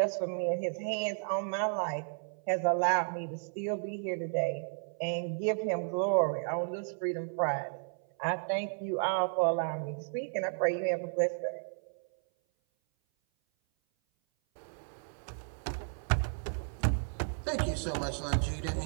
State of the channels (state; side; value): silent; left; 56 dB below the other